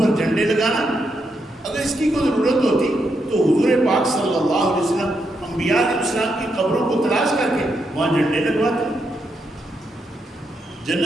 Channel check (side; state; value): both; normal; correlation 0.81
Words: جھنڈے لگانا۔ اگر اس کی کوئی ضرورت ہوتی تو حضور پاک صلی اللہ علیہ وسلم انبیاء علیہ السلام کی قبروں کو تلاش کر کے وہاں جھنڈے لگواتے۔